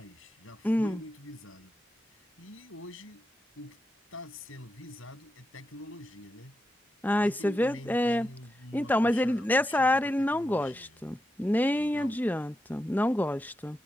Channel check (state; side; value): normal; both; correlation 0.88